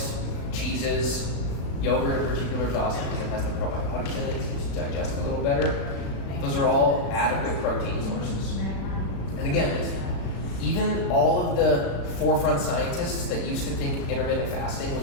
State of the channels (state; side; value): late; right; 36 ms